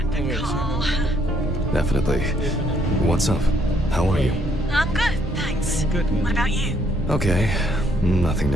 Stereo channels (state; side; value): normal; both; correlation 0.70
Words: to call. Definitely. What's up? How are you? I'm good, thanks. Good. What about you? Okay. Nothing